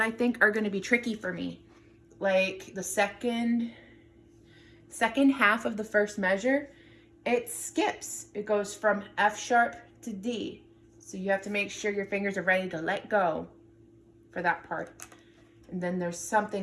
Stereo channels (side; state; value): both; identical; correlation 1.00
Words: think are going to be tricky for me. Like the second half of the first measure, it skips. It goes from F sharp to D. So you have to make sure your fingers are ready to let go for that part. And then there's